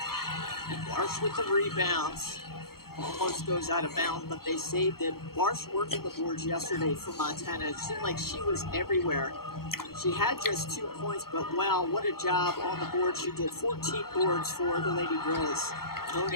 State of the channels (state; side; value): late; right; 0.94 ms